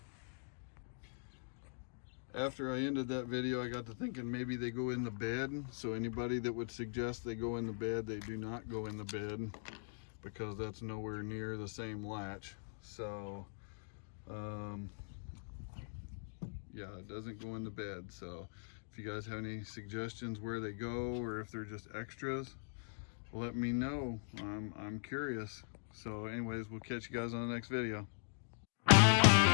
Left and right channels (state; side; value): silent; right; digital silence